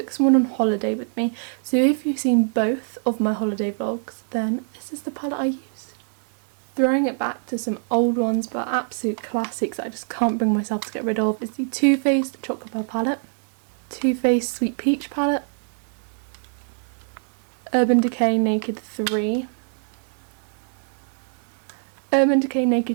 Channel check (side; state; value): left; silent; digital silence